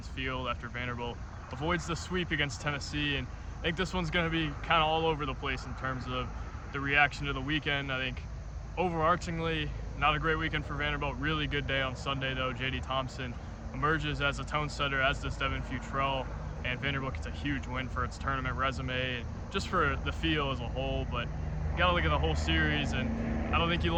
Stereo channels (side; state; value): both; identical; correlation 1.00